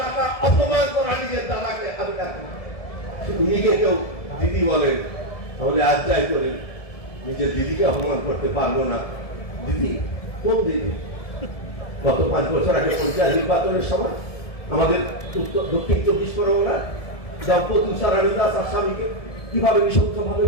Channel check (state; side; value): late; right; 1.7 ms